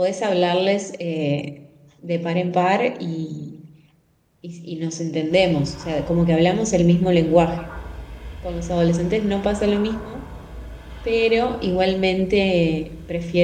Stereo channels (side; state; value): both; identical; correlation 1.00